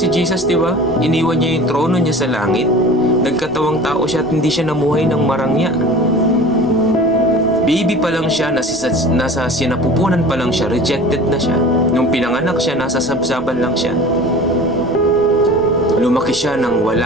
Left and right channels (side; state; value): left; noise; rumble, 22 dB below the sound